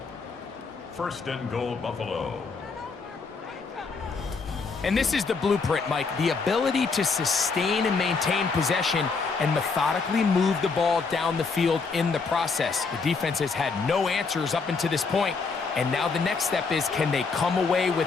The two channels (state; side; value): quieter; right; 4.7 dB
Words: 1st and goal, Buffalo. And this is the blueprint, Mike. The ability to sustain and maintain possession and methodically move the ball down the field in the process. The defense has had no answers up until this point. And now the next step is, can they come away